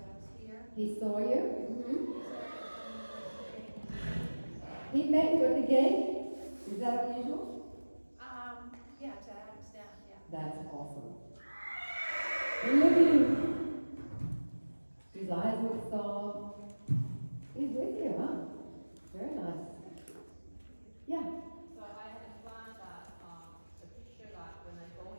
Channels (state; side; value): inverted; both; correlation -1.00